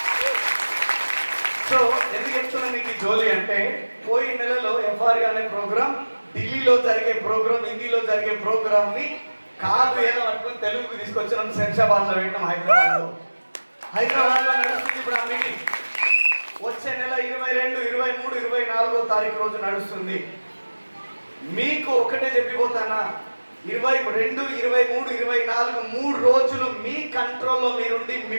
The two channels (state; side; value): inverted; both; correlation -1.00